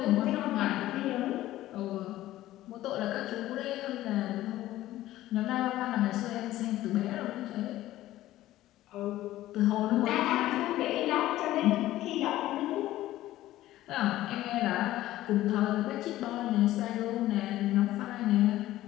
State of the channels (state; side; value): quieter; right; 15.0 dB